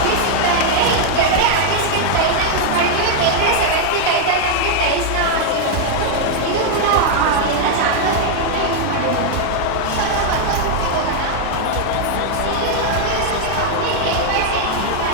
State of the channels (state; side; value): different; both; correlation 0.00